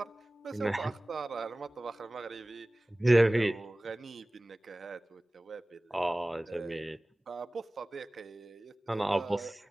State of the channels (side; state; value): both; normal; correlation 0.98